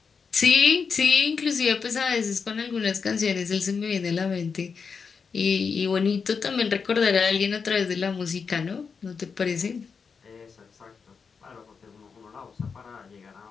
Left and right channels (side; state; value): right; quieter; 5.6 dB